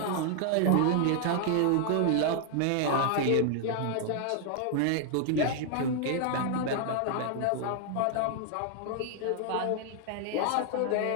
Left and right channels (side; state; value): both; different; correlation 0.00